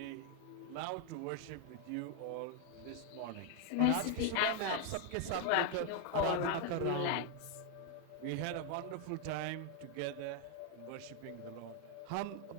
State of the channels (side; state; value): both; different; correlation 0.01